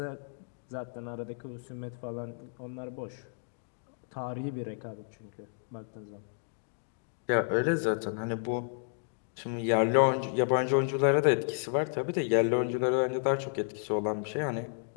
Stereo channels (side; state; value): right; silent; digital silence